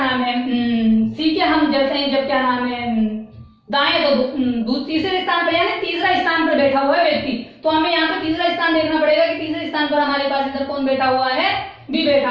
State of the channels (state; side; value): identical; both; correlation 1.00